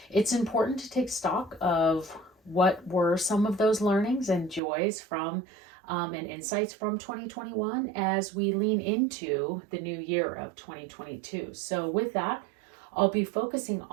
It's important to take stock of what were some of those learnings and joys from and insights from 2021 as we lean into the new year of 2022. So with that, I'll be focusing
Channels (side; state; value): left; drops out; at 4.6 s